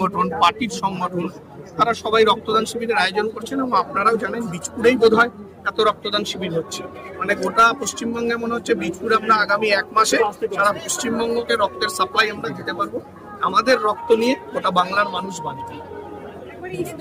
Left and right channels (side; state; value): both; identical; correlation 1.00